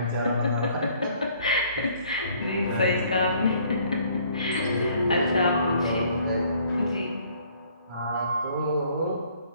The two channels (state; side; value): inverted; both; correlation -0.61